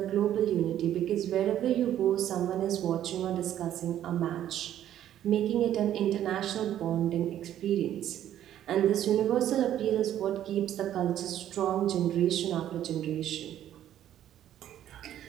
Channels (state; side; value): quieter; left; 11.4 dB